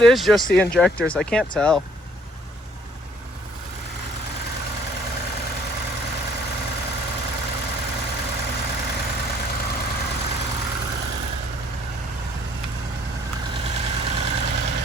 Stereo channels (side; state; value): both; normal; correlation 0.61